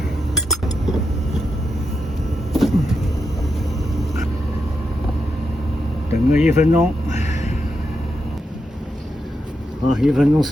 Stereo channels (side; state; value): both; normal; correlation 0.85